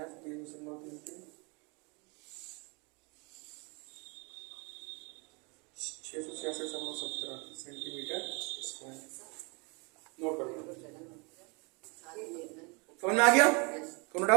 20.33 666.17 centimetre square. Note कर लो। समझ में आ गया? कोनो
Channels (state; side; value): quieter; left; 30.9 dB